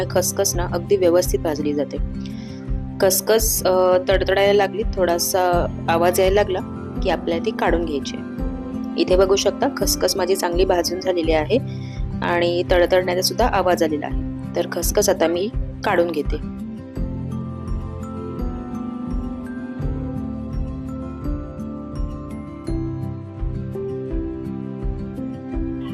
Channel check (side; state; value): both; identical; correlation 1.00